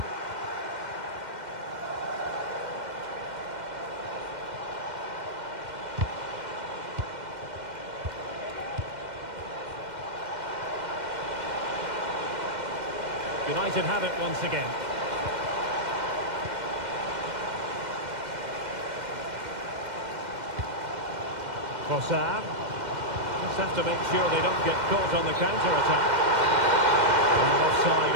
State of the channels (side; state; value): left; late; 2.1 ms